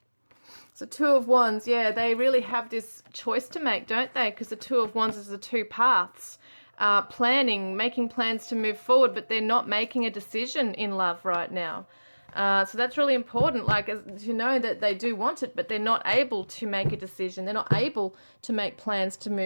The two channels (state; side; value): inverted; both; correlation -1.00